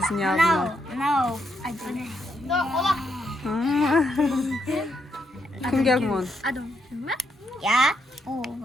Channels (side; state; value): both; normal; correlation 0.79